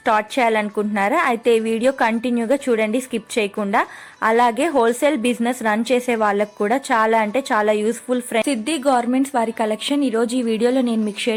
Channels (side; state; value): both; identical; correlation 1.00